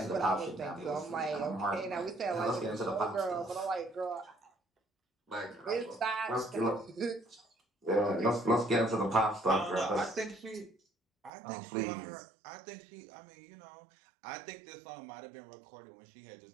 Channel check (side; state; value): left; drops out; at 11.3 s